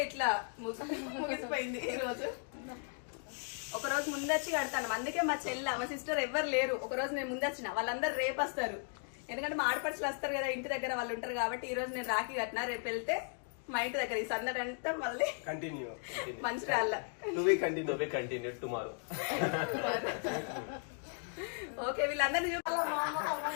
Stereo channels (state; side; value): silent; right; 54 dB below the other